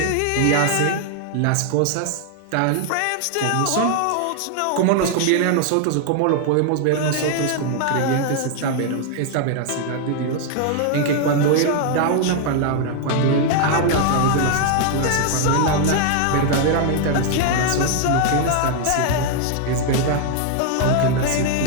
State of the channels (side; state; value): both; different; correlation 0.00